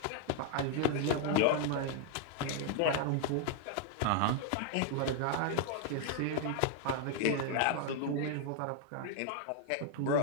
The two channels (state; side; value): different; both; correlation 0.00